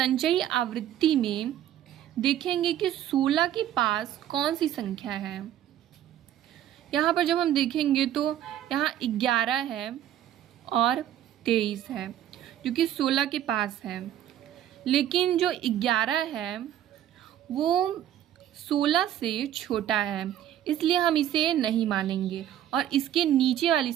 आवृत्ति में देखेंगे कि 16 के पास कौन सी संख्या है। यहाँ पर जब हम देखेंगे तो यहाँ 11 है और 23 है, जो कि 16 के पास है। लेकिन जो 11 है वो 16 से छोटा है, इसलिए हम इसे नहीं मानेंगे और इसके नीचे वाली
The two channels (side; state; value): left; quieter; 11.4 dB